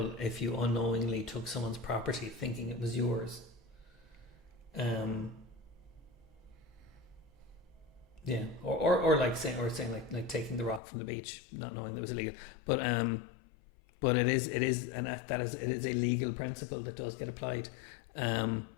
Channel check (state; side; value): drops out; right; at 10.8 s